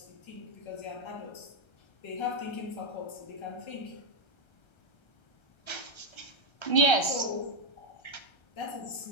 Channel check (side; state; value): right; late; 1.3 ms